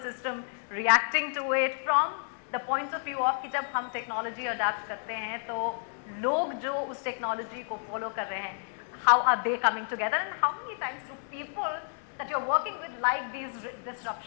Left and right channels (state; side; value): silent; right; 57 dB below the other